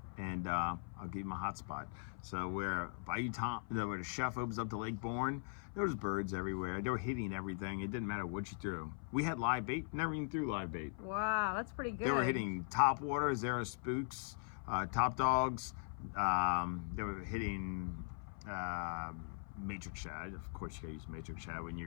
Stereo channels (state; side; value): silent; right; 51 dB below the other